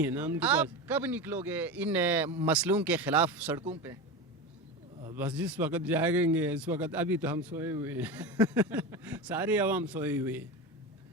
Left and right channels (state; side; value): normal; both; correlation 0.23